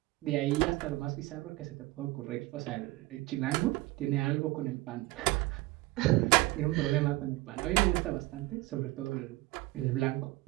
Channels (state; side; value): quieter; left; 19.8 dB